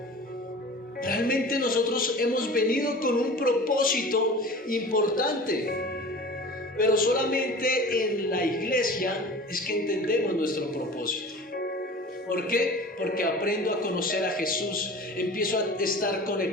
Realmente nosotros hemos venido con un propósito importante, pero solamente en la iglesia iglesia es que entendemos nuestro propósito. ¿Por qué? Porque aprendo a conocer a Jesús, empiezo a estar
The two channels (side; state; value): both; normal; correlation 0.39